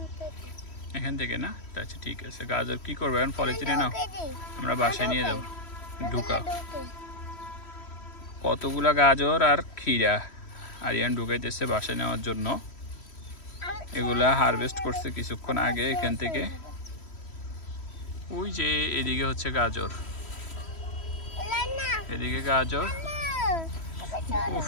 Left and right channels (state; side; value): late; right; 3.1 ms